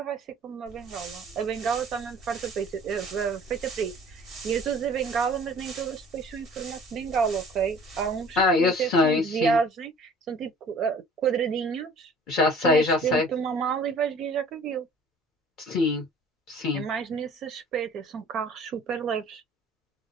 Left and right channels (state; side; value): normal; both; correlation 0.49